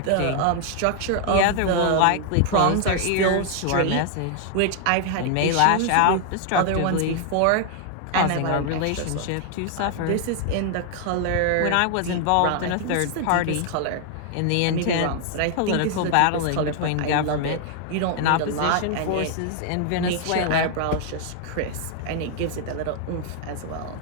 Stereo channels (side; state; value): both; different; correlation 0.00